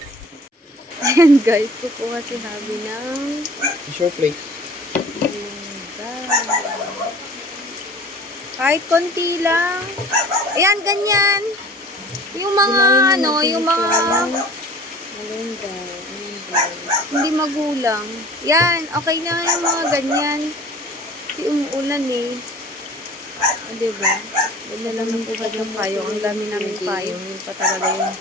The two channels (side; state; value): both; normal; correlation 0.45